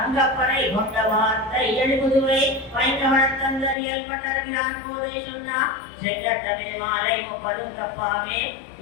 கொண்ட வார்த்தை எழுதுவை வைங்கவனத்தந்தரியல் பட்டருகிறான் போதை சொன்னா செங்கட்டமே மாலை 30 தப்பாமே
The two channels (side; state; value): right; drops out; at 3.8 s